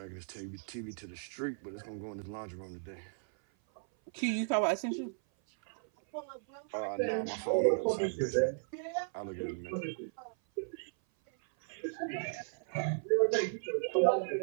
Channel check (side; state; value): left; silent; 54 dB below the other